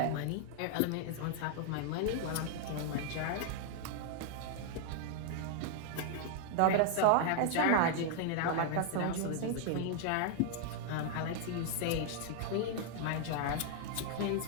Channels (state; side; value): different; both; correlation 0.00